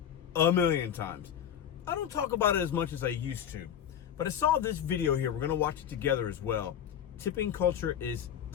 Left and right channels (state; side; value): quieter; right; 9.3 dB